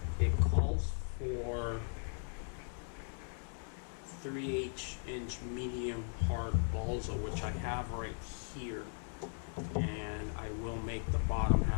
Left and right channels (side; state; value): right; silent; 52 dB below the other